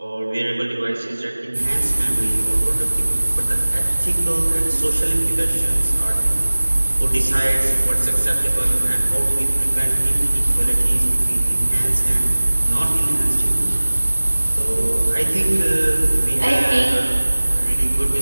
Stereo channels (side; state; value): both; inverted; correlation -1.00